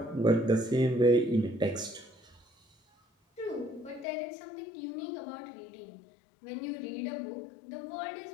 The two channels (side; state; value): right; drops out; at 4.0 s